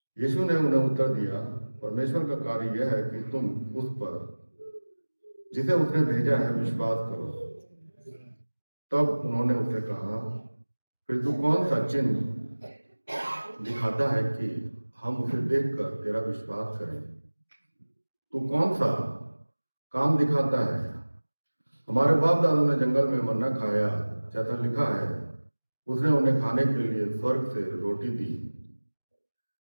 यीशु ने उन्हें उत्तर दिया, परमेश्वर का कार्य यह है कि तुम उस पर जिसे उसने भेजा है विश्वास करो। तब उन्होंने उससे कहा, फिर तू कौन सा चिन्ह दिखाता है कि हम उसे देखकर तेरा विश्वास करें? तू कौन सा काम दिखाता है? हमारे बाप दादों ने जंगल में मन्ना खाया, जैसा लिखा है, उसने उन्हें खाने के लिए स्वर्ग से रोटी दी।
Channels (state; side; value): inverted; both; correlation -1.00